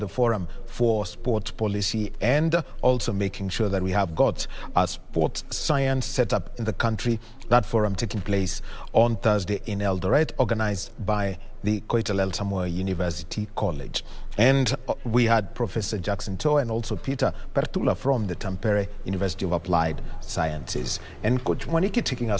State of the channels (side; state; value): both; identical; correlation 1.00